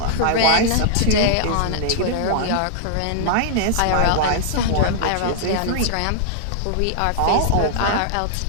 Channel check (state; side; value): different; both; correlation -0.01